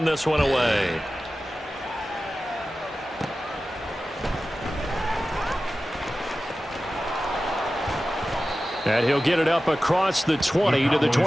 this one away. And he'll get it up across the 20 to the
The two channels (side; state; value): both; normal; correlation 0.95